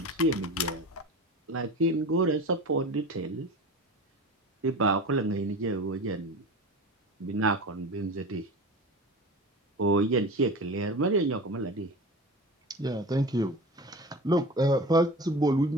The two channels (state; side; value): normal; both; correlation 0.32